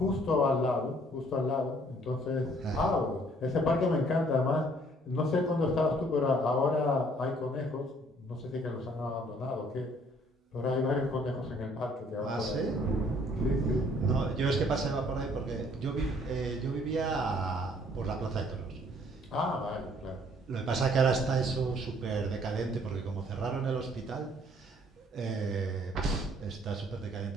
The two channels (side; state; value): both; normal; correlation 0.61